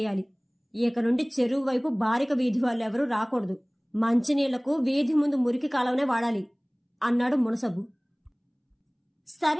ఇక నుండి చెరువు వైపు బారిక వీధి వాళ్ళెవరూ రాకూడదు. మంచినీళ్లకు వీధి ముందు మురికి కాలవనే వాడాలి అన్నాడు మునసబు.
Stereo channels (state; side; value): identical; both; correlation 1.00